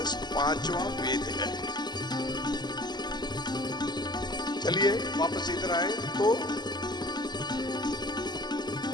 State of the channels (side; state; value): right; late; 0.21 ms